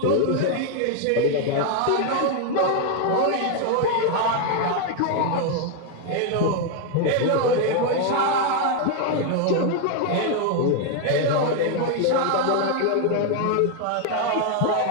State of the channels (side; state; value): both; different; correlation 0.01